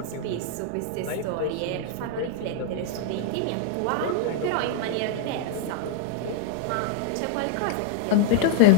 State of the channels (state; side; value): different; both; correlation 0.00